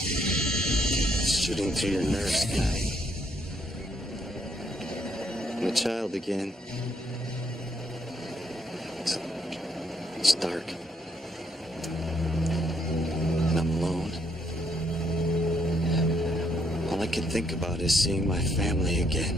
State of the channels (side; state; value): both; normal; correlation 0.72